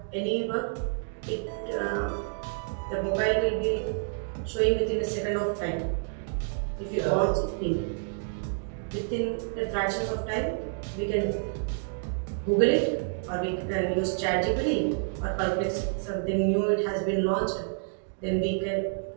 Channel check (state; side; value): silent; left; digital silence